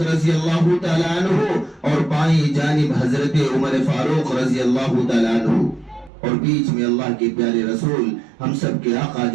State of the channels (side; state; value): left; drops out; at 6.1 s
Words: رضی اللہ تعالی عنہ اور بائیں جانب حضرت عمر فاروق رضی اللہ تعالی عنہ، اور بیچ میں اللہ کے پیارے رسول ہم سب کے آقا